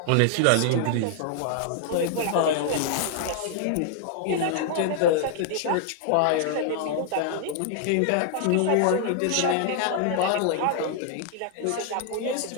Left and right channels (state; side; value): different; both; correlation 0.00